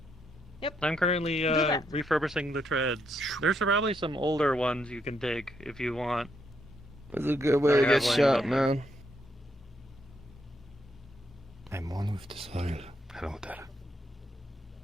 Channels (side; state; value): both; normal; correlation 0.76